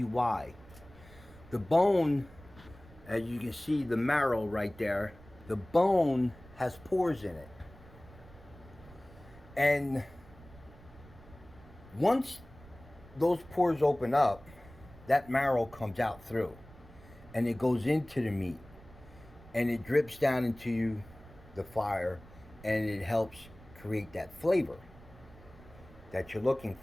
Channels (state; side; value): noise; right; rumble, 21 dB below the sound